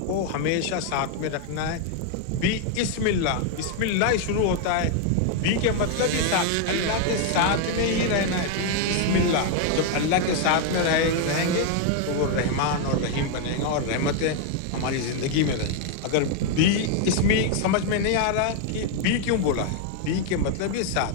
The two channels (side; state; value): both; different; correlation 0.00